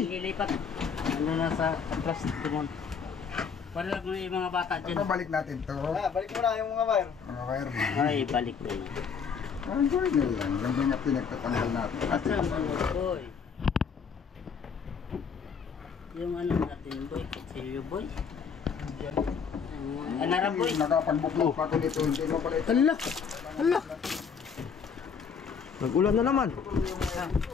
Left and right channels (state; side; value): quieter; right; 6.3 dB